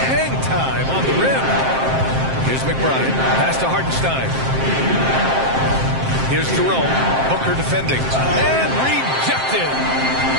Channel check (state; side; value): late; left; 7.6 ms